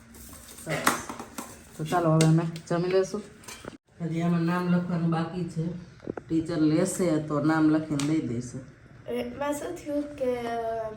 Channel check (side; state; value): both; identical; correlation 1.00